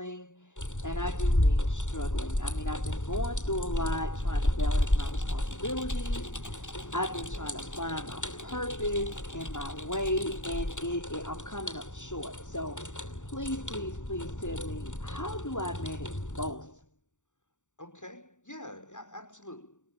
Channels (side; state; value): right; late; 0.85 ms